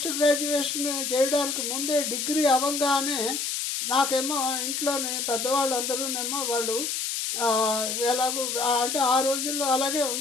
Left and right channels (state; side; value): noise; left; hiss, 2 dB below the sound